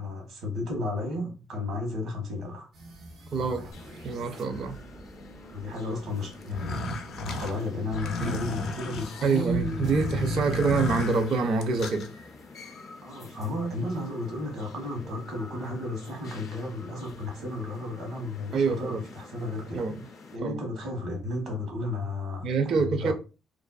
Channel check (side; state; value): both; normal; correlation 0.62